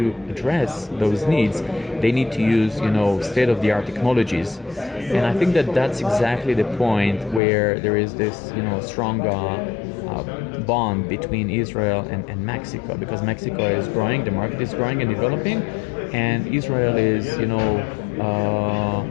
address those needs, they need to use, state-of-the-art technologies. And I think that that's exactly the point where there is this, strong bond between Israel and Mexico, because Mexico is growing, the market is growing and developing, and Israel is,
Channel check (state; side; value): drops out; right; at 7.4 s